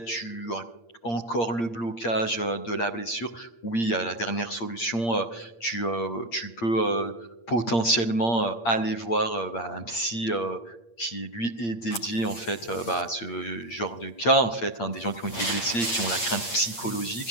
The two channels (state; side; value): late; right; 8.7 ms